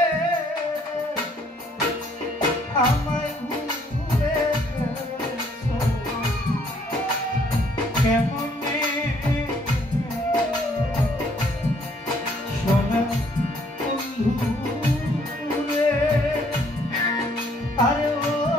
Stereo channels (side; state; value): both; normal; correlation 0.64